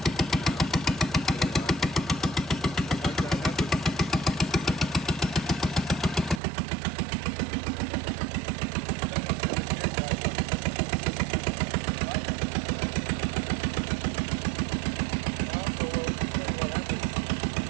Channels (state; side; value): drops out; left; at 6.4 s